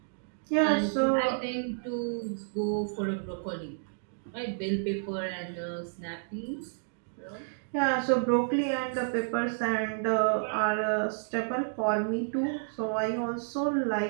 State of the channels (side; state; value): left; silent; digital silence